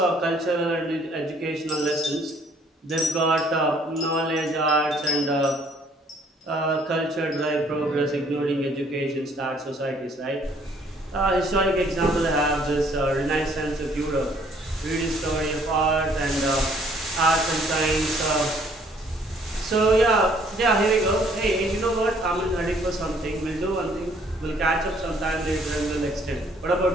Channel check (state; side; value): normal; both; correlation 0.62